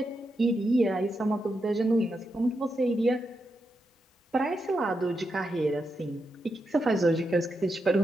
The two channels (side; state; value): both; normal; correlation 0.85